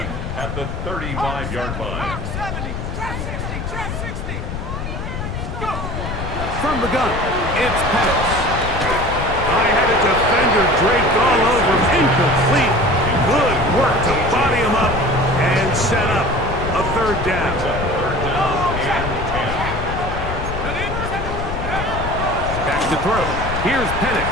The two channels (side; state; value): left; noise; rumble, 5 dB below the sound